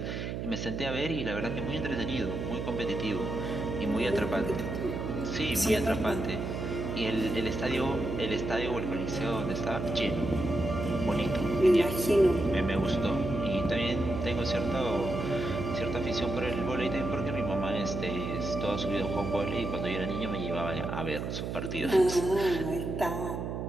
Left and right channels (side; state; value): right; noise; hum, 4 dB below the sound